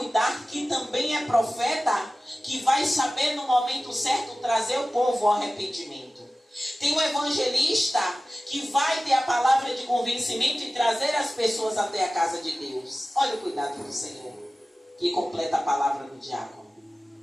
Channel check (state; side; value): normal; both; correlation 0.96